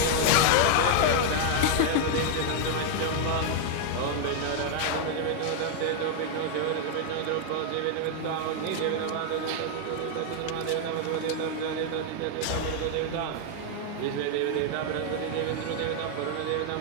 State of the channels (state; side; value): different; both; correlation 0.00